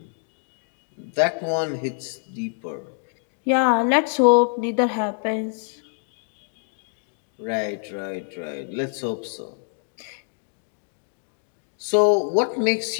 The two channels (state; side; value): silent; right; digital silence